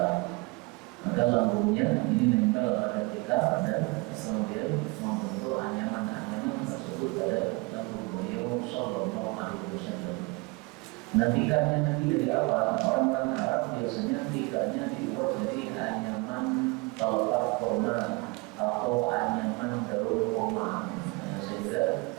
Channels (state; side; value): quieter; left; 26.8 dB